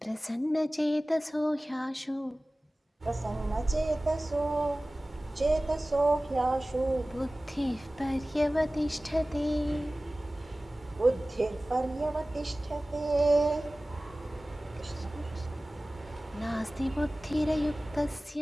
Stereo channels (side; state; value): both; normal; correlation 0.97